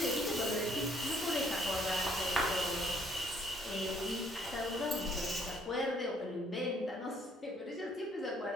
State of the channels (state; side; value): normal; both; correlation 0.64